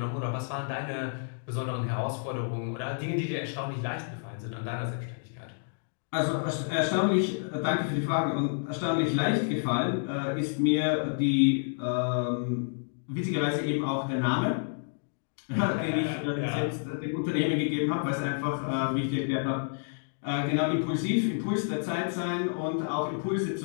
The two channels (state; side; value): silent; right; digital silence